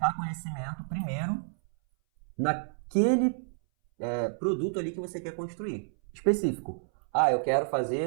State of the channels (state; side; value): silent; left; 58 dB below the other